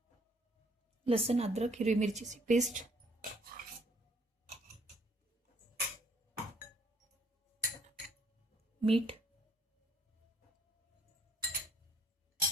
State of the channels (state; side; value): normal; both; correlation 0.64